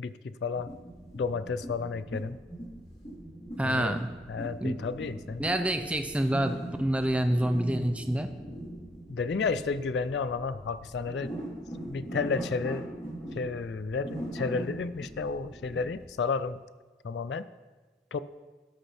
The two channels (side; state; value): both; normal; correlation 0.58